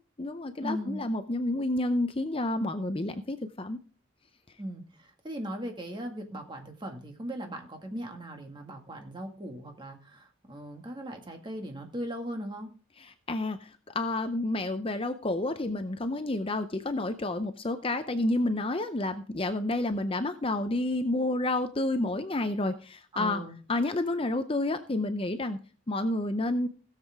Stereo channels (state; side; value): normal; both; correlation 0.58